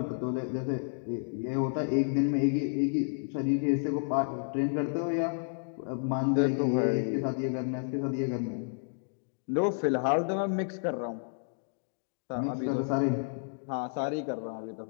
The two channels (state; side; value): silent; right; digital silence